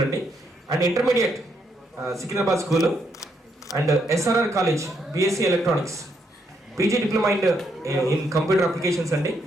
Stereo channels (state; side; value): normal; both; correlation 0.76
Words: అండి. And intermediate Secunderabad school. And SRR college BSc electronics, PG diploma in computer applications అండి.